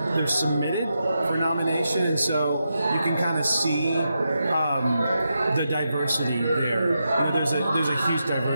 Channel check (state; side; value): inverted; both; correlation -0.86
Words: submitted for nomination, and so you can kind of see the diversity there. You know, there's a huge